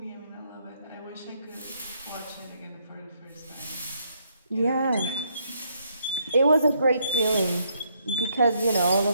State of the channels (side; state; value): both; inverted; correlation -0.72